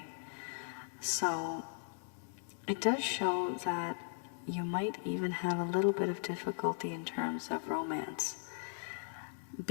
So it does show that you might even have a little bit of difficulty in terms of romance.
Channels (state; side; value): silent; right; digital silence